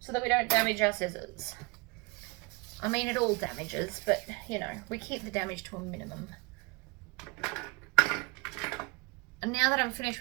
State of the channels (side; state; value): left; quieter; 26.5 dB